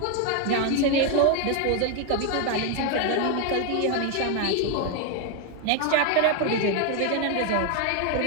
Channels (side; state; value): both; different; correlation 0.01